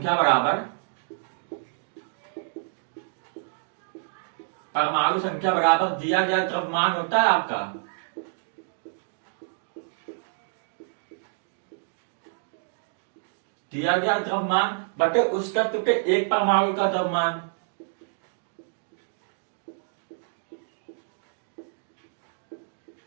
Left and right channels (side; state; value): left; silent; digital silence